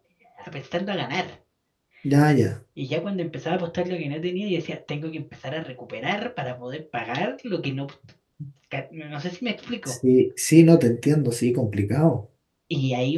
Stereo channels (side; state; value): both; identical; correlation 1.00